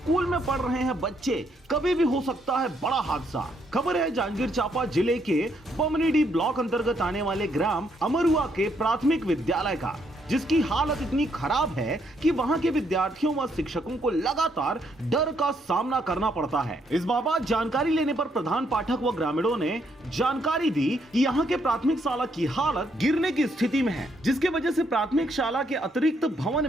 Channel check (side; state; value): both; normal; correlation 0.73